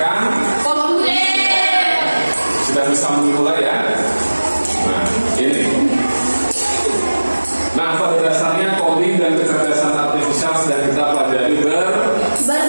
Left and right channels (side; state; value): both; inverted; correlation -1.00